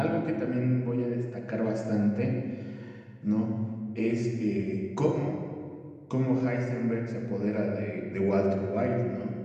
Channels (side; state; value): both; identical; correlation 1.00